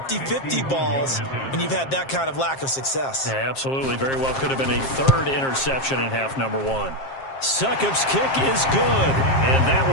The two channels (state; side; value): late; right; 7.5 ms